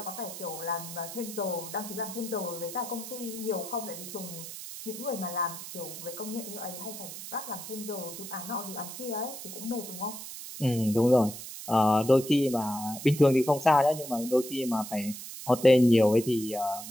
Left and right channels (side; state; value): right; noise; hiss, 10 dB below the sound